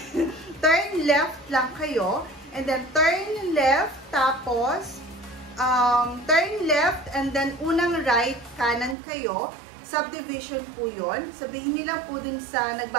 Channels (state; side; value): drops out; left; at 9.0 s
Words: left lang kayo. And then, turn left. Tapos, turn left. And then, unang right, kanan kayo. Subdivision po yun. Sabihin nila po dun sa